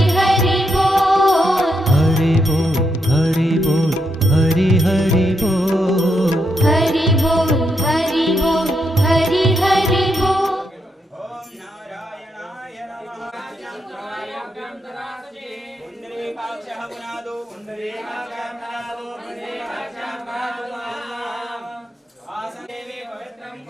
हरि बोल हरि बोल हरि बोल हरि हरि बोल हरि बोल हरि बोल हरि हरि बोल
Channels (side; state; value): both; normal; correlation 0.81